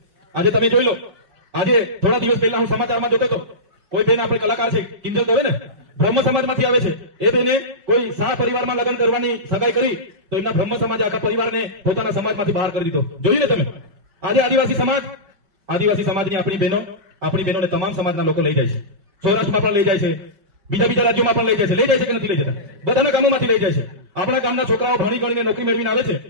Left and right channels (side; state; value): left; late; 5.1 ms